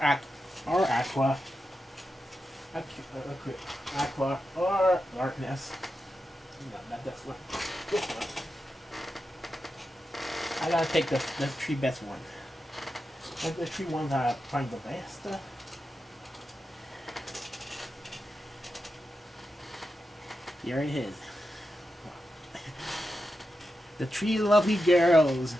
Aqua, Aqua or Darkness. No, not this one. This one. I gotta take the three best one. Like the three ones I find the best. Here it is. The three lovely girls.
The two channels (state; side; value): normal; both; correlation 0.89